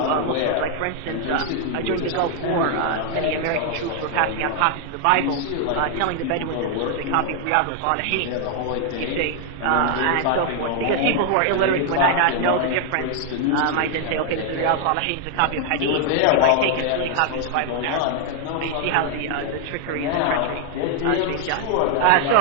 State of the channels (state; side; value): different; both; correlation 0.00